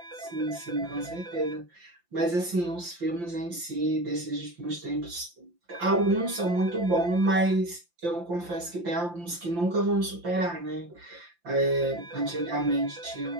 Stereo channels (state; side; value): late; left; 5.8 ms